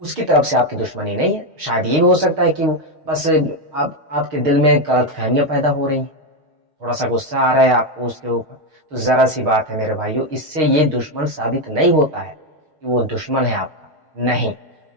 اس کی طرف سے آپ کی دشمنی نہیں ہے۔ شاید یہ بھی ہو سکتا ہے کہ بس آپ کے دل میں غلط فہمیاں پیدا ہو رہی ہیں، تھوڑا سا غصہ آ رہا ہے آپ کو اس کے اوپر، تو ذرا سی بات ہے میرے بھائیوں، اس سے یہ دشمن ثابت نہیں ہوتا ہے کہ وہ دشمن ہے آپ کا، نہیں۔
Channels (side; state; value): left; late; 6.4 ms